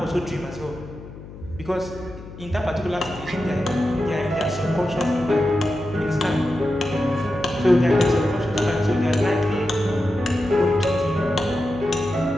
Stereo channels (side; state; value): left; noise; hum, 15 dB below the sound